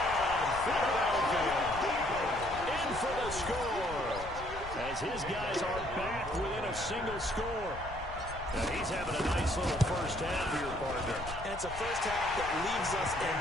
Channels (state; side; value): noise; left; rumble, 12 dB below the sound